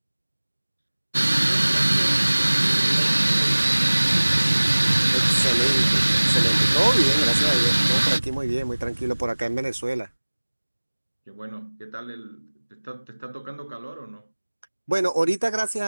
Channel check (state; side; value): inverted; both; correlation -1.00